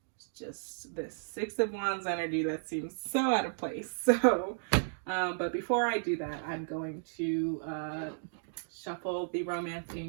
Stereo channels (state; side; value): silent; left; digital silence